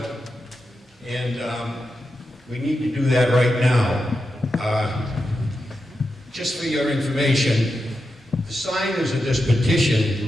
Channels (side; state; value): both; normal; correlation 0.88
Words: And we need to do that right now. Just for your information, the signers of this